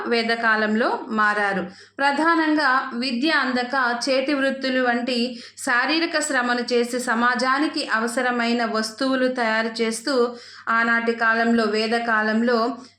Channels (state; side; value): identical; both; correlation 1.00